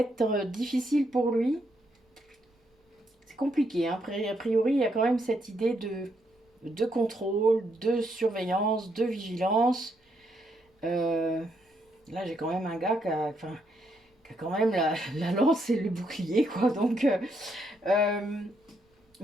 difficile pour lui. C'est compliqué. Hein. A priori, il y a quand même cette idée de contrôle, de surveillance, de vigilance. Là, j'ai quand même un gars qui a quand même la lance et le bouclier. Quoi. Donc...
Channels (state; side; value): normal; both; correlation 0.76